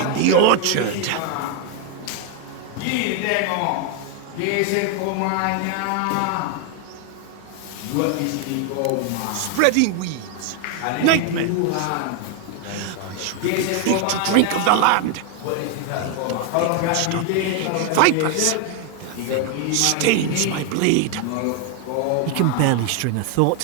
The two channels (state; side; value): different; both; correlation 0.01